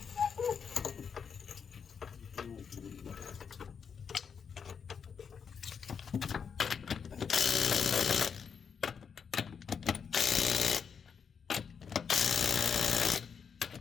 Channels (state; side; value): quieter; right; 6.6 dB